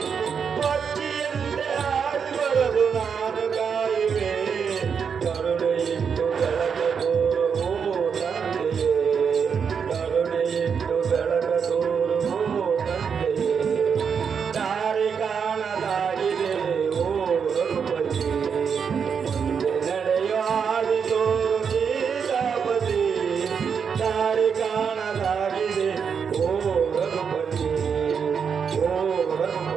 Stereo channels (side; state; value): left; quieter; 6.6 dB